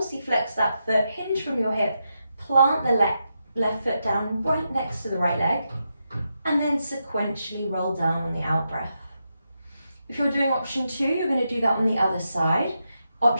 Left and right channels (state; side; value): inverted; both; correlation -0.85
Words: that foot, hinge from your hip, plant the left foot down right next to the right leg, and then sequentially roll down on the out breath. If you're doing option 2, you're going to do that on the other side.